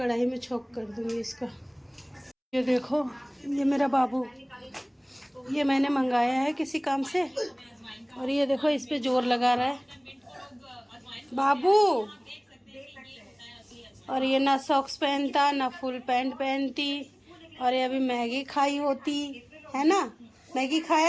में छोंक कर दूँगी इसका। ये देखो, ये मेरा बाबू, ये मैंने मंगाया है किसी काम से, और ये देखो इस पे जोर लगा रहा है बाबू। और ये ना सॉक्स पहनता ना फुल पैंट पहनती। और ये अभी मैगी खाई होती है ना, मैगी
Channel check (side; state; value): both; identical; correlation 1.00